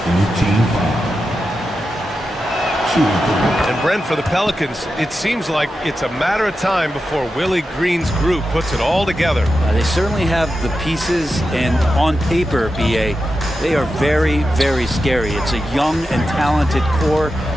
team foul. And Brent, for the Pelicans, it seems like it's a matter of time before Willie Green's group puts it all together. They certainly have the pieces, and on paper, BA, they are very, very scary. It's a young and talented core,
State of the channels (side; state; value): both; normal; correlation 0.90